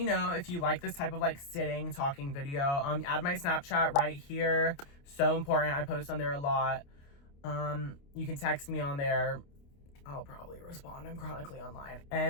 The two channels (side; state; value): right; late; 29 ms